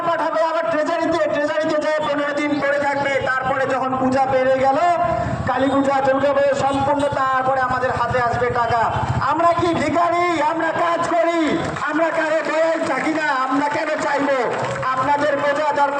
পাঠাবে আবার ট্রেজারিতে, ট্রেজারিতে যেয়ে 15 দিন পরে থাকবে। তারপরে যখন পূজা পেরে গেল, কালী পূজা, দুর্গা পূজা সম্পূর্ণ, তারপরে আমাদের হাতে আসবে টাকা। আমরা কি ভিখারি? আমরা কাজ করি, আমরা কারো দয়ায় থাকি না। আমরা কেন চাইবো? আপনাদের বোঝা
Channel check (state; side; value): identical; both; correlation 1.00